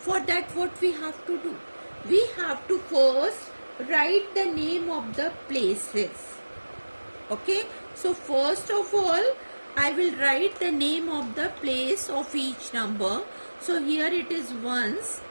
that, what we have to do? We have to first write the name of the places. Okay. So first of all, I will write the name of the place of each number. So here it is ones,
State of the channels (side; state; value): both; inverted; correlation -1.00